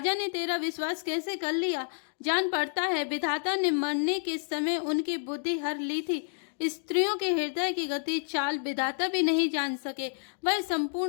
ने तेरा विश्वास कैसे कर लिया। जान पड़ता है विधाता ने मरने के समय उनकी बुद्धि हर ली थी। स्त्रियों के हृदय की गति चाल विधाता भी नहीं जान सके। वह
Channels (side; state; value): right; silent; digital silence